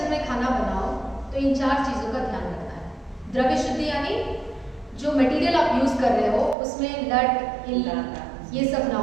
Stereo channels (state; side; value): drops out; left; at 6.6 s